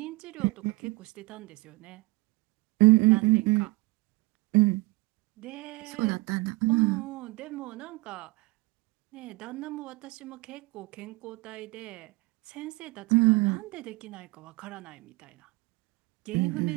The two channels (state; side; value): quieter; left; 22.5 dB